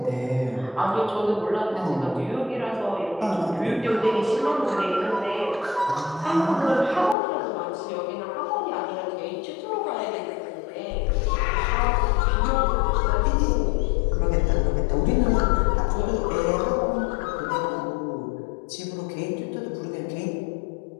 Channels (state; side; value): drops out; right; at 7.2 s